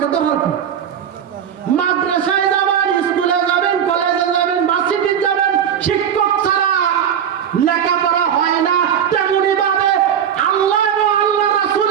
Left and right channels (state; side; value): quieter; left; 8.7 dB